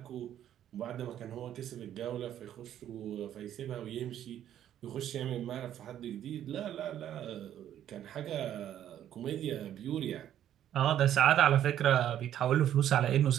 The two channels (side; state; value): left; quieter; 11.0 dB